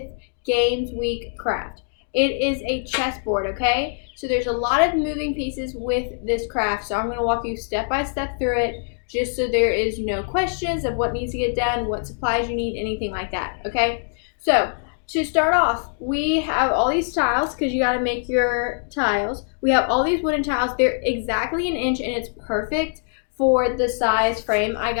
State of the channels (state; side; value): silent; right; digital silence